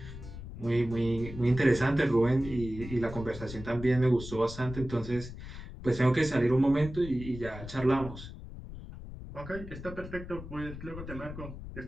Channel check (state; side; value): noise; left; rumble, 11 dB below the sound